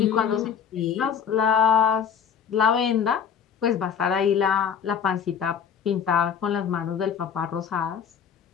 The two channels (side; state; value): right; quieter; 7.5 dB